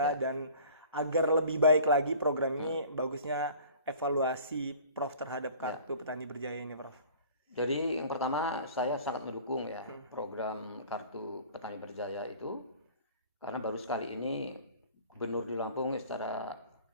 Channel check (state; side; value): inverted; both; correlation -0.46